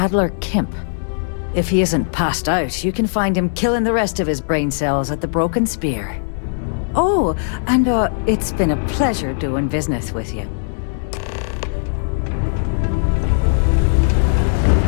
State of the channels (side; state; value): right; silent; digital silence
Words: Kemp. If he isn't passed out, you can find him killing the rest of his brain cells at the Broken Spear. Oh, and it's been a pleasure doing business with you.